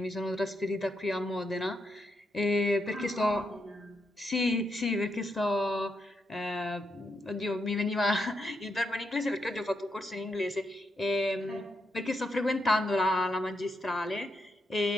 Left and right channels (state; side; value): normal; both; correlation 0.82